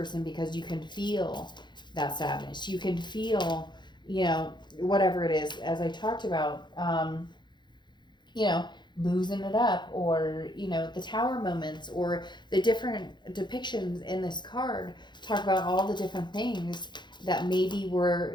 because you can feel that sadness. You can feel, you know, whatever it is, as I talked about, you know, losing it up, or, you know, the tower moments, or the different depictions in this card talk about all the different things that maybe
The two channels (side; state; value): right; late; 0.22 ms